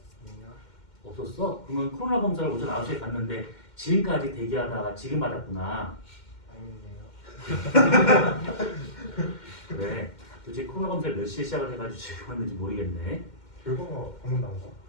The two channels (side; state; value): right; late; 2.1 ms